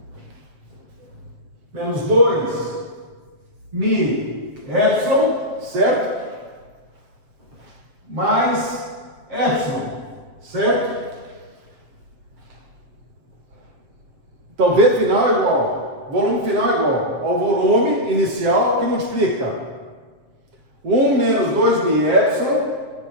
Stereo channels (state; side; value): late; left; 7.4 ms